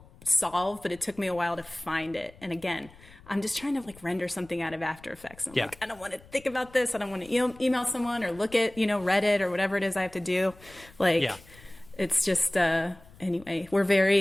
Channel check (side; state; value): left; noise; rumble, 24 dB below the sound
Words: solve, but it took me a while to find it. And again, I'm just trying to render something out of After Effects. And I'm like, I don't want to think about this. I don't want to email someone or look at, Reddit or whatever it is I have to do. It's just, anyway, we're